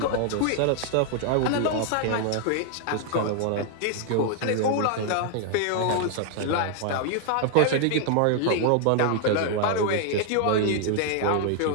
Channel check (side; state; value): both; different; correlation 0.00